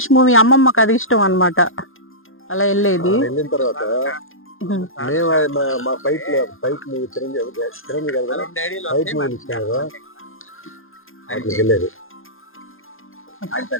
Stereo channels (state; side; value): late; right; 0.60 ms